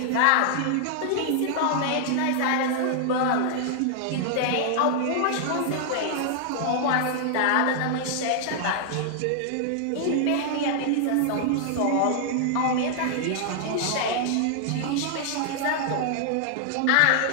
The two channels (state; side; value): different; both; correlation -0.01